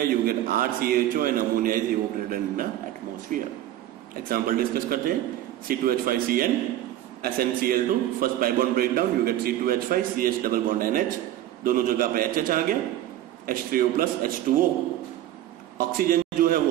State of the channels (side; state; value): left; quieter; 13.0 dB